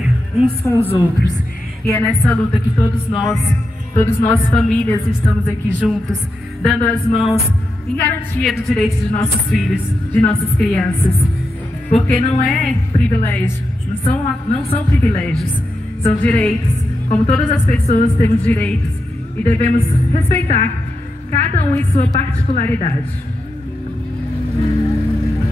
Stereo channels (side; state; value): both; normal; correlation 0.87